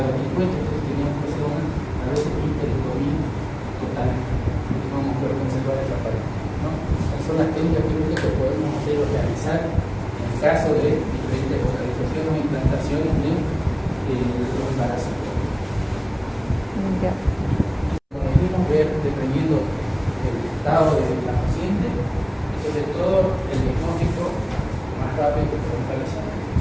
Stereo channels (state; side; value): identical; both; correlation 1.00